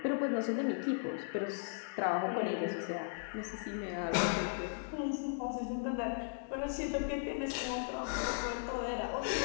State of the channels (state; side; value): silent; right; digital silence